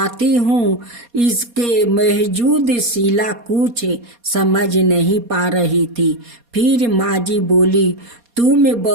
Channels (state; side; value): late; left; 4.2 ms